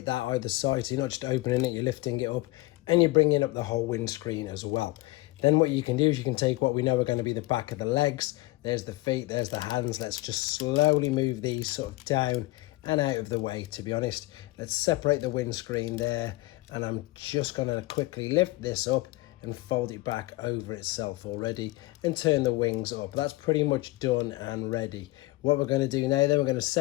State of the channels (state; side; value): quieter; right; 20.4 dB